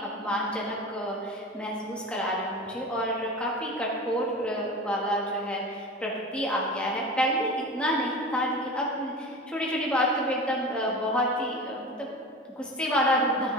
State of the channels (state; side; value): normal; both; correlation 0.32